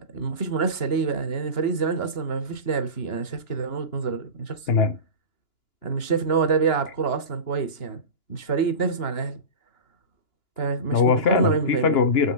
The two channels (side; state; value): right; late; 2.9 ms